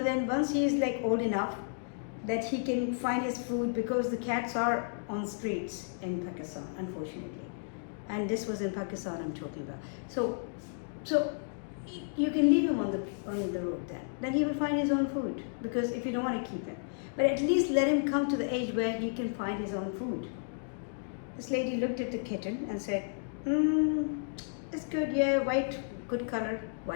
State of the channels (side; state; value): right; silent; digital silence